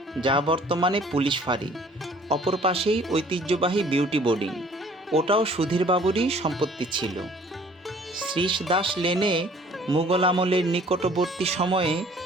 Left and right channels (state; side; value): normal; both; correlation 0.54